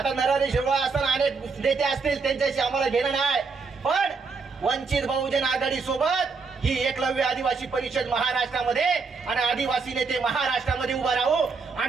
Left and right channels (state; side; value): quieter; left; 4.7 dB